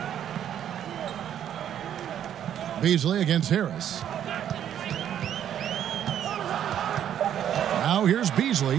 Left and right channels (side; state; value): left; quieter; 10.0 dB